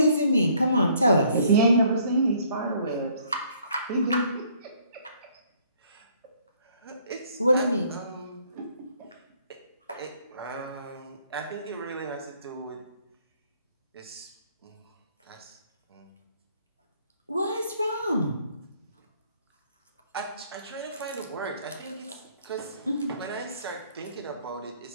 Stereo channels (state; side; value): inverted; both; correlation -0.63